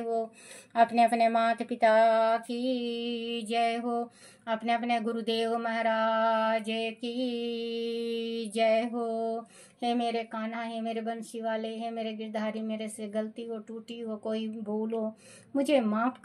अपने अपने माता पिता की जय हो। अपने अपने गुरुदेव महाराज की जय हो। हे मेरे कान्हा, हे मेरे बंसी वाले, हे मेरे गिरधारी, मेरे से गलती हो, टूटी हो, कोई भूल हो, मुझे माफ़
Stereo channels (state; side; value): identical; both; correlation 1.00